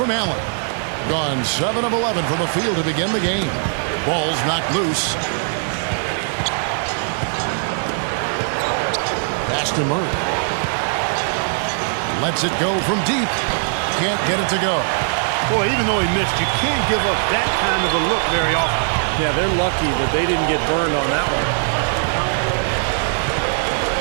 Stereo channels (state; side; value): silent; left; digital silence